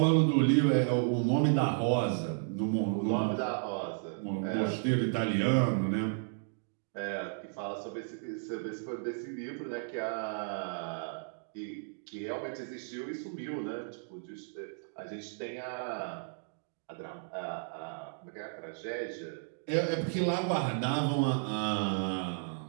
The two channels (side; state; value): left; silent; digital silence